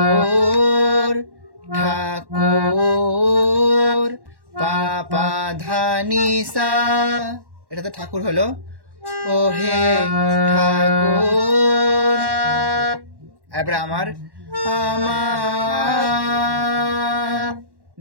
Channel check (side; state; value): left; late; 1.1 ms